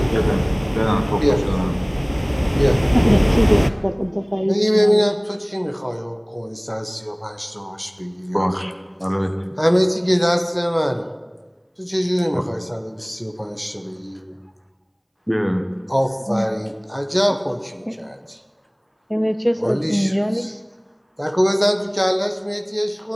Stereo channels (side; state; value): both; identical; correlation 1.00